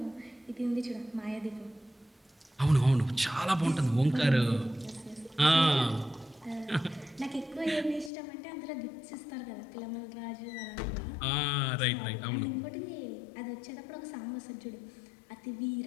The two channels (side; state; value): right; drops out; at 8.1 s